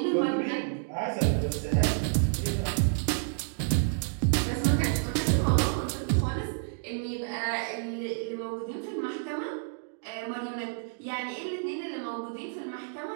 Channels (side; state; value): left; silent; digital silence